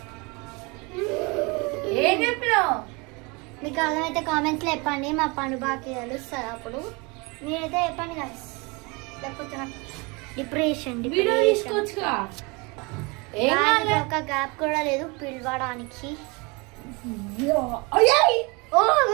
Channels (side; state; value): left; quieter; 27.9 dB